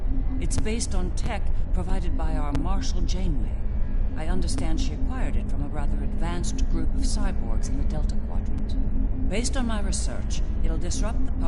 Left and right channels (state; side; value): identical; both; correlation 1.00